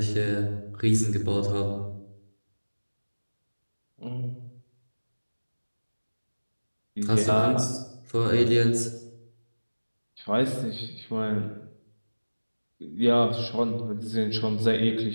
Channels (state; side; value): inverted; both; correlation -1.00